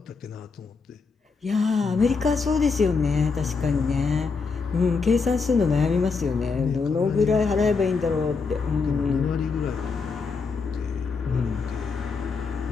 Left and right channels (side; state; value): right; quieter; 4.7 dB